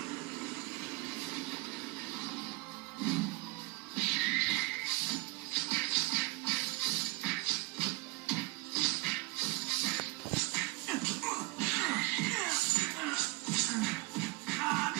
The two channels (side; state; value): left; quieter; 23.5 dB